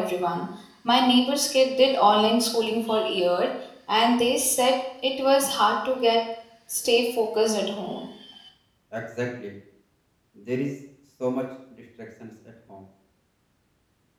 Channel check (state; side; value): identical; both; correlation 1.00